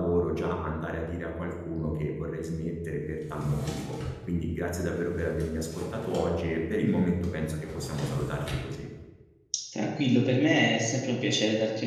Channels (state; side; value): identical; both; correlation 1.00